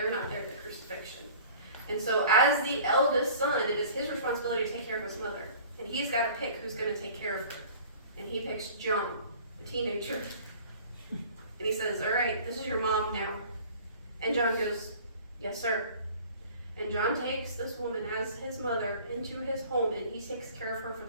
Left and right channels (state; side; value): inverted; both; correlation -0.47